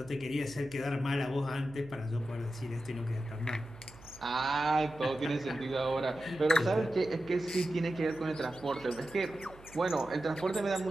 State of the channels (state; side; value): noise; right; hum, 21 dB below the sound